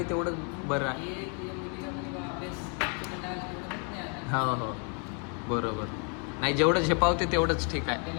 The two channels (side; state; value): right; quieter; 38.2 dB